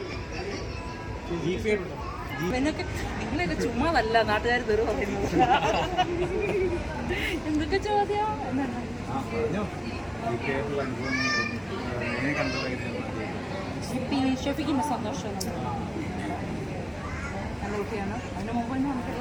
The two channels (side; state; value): both; identical; correlation 1.00